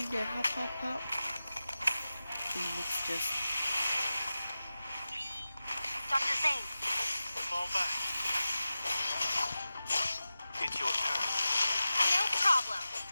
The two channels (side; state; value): both; inverted; correlation -0.95